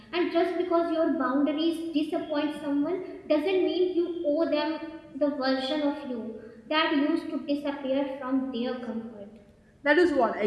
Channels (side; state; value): both; identical; correlation 1.00